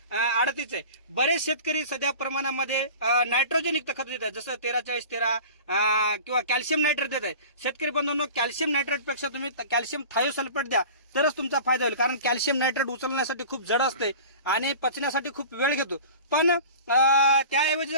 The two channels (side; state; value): both; inverted; correlation -0.38